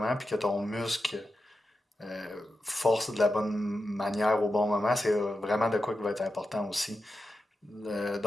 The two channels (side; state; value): both; normal; correlation 0.90